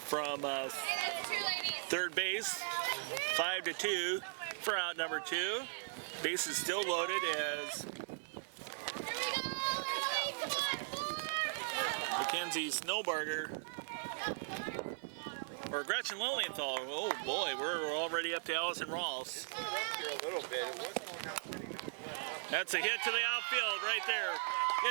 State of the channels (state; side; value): silent; left; digital silence